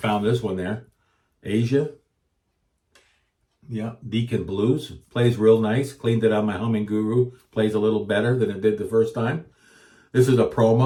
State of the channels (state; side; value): identical; both; correlation 1.00